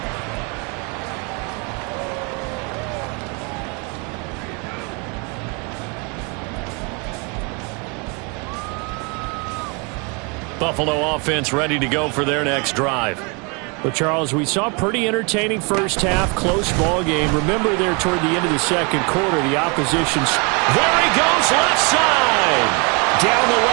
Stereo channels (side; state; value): left; quieter; 31.5 dB